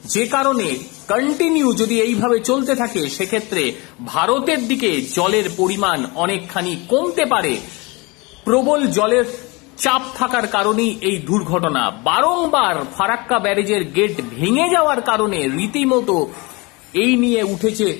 যে কারণে কন্টিনিউ যদি এইভাবে চলতে থাকে সেক্ষেত্রে ভারতের দিকে জলের পরিমাণ অনেকখানি কমতে পারে। প্রবল জলের চাপ থাকার কারণেই এই দুর্ঘটনা। বারংবার ফারাক্কা ব্যারেজের গেট ভেঙে যাওয়ার কারণে রীতিমতো এই নিয়ে উঠেছে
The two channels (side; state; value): right; quieter; 26.3 dB